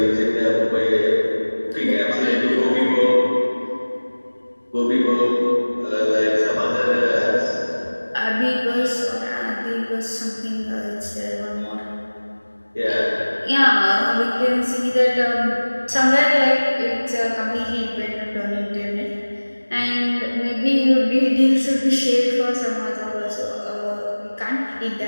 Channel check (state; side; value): inverted; both; correlation -1.00